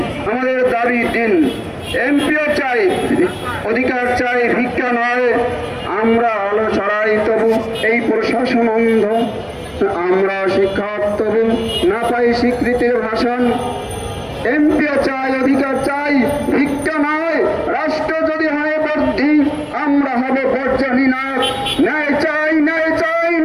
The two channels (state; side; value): identical; both; correlation 1.00